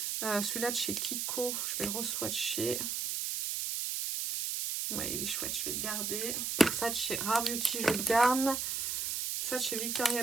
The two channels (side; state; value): right; noise; hiss, 1 dB below the sound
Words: Celui-là de chez Kiko, je vais le re-swatcher. Ouais, il est chouette, je vais le garder. Ça de chez Rare Beauty, je garde. Ça de chez Victoria